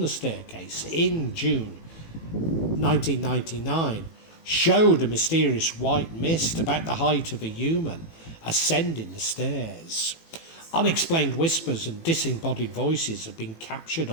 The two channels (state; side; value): late; right; 18 ms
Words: staircase in June 1999 showed a mysterious white mist about the height of a human ascending the stairs. Unexplained whispers and disembodied voices have been captured